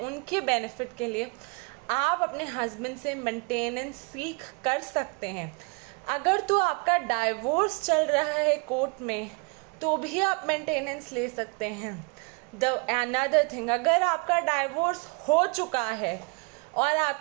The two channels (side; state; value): left; quieter; 32.6 dB